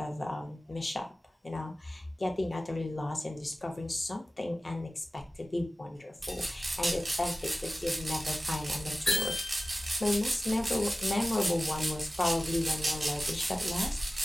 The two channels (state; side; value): normal; both; correlation 0.96